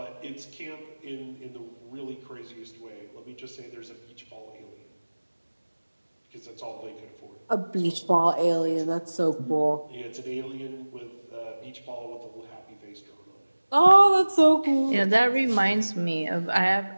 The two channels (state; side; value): inverted; both; correlation -1.00